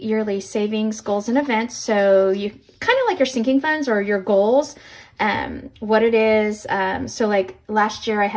savings, goals, and events. So you kind of like your sinking funds or your goals. What it is, so like last year I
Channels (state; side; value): identical; both; correlation 1.00